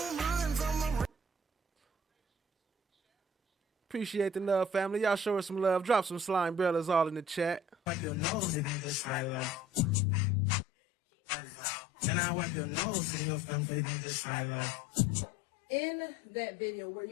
run from a Appreciate the love, family. Y'all show us some love. Drop some slime bellas all in the chat. wipe your nose and just right like. And I wipe your nose and your family just right like. In that video, were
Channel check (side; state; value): right; drops out; at 10.0 s